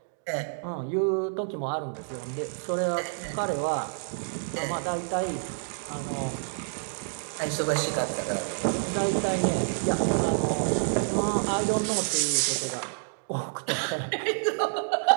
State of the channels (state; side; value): silent; left; digital silence